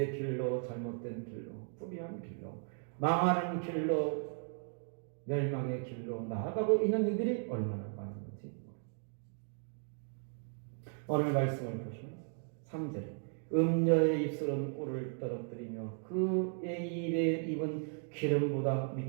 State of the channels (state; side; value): silent; left; 54 dB below the other